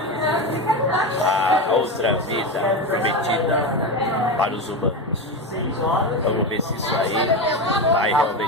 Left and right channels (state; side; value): normal; both; correlation 0.18